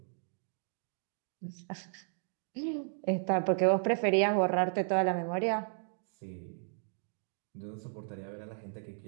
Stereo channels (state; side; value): silent; left; digital silence